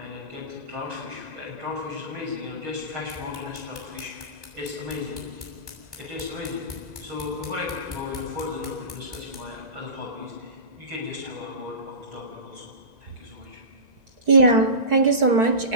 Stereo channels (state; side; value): late; left; 1.9 ms